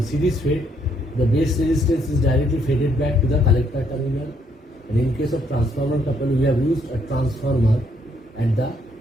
series fed, the base resistance is directly faded back to the collector terminal. And in case of transformer couple, we have used a transformer at the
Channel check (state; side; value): normal; both; correlation 0.71